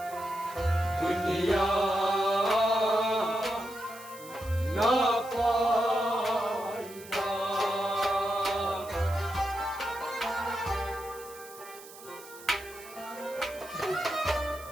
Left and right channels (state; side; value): noise; right; hiss, 18 dB below the sound